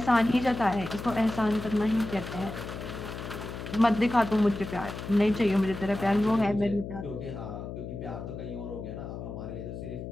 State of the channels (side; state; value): left; noise; hum, 8 dB below the sound